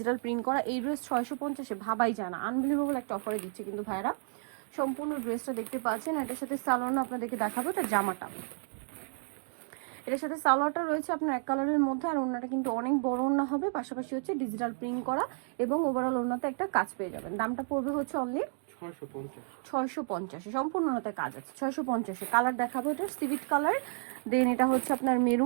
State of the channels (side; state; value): left; silent; 57 dB below the other